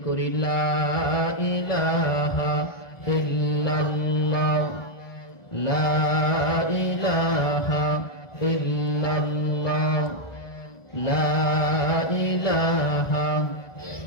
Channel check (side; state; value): right; late; 1.4 ms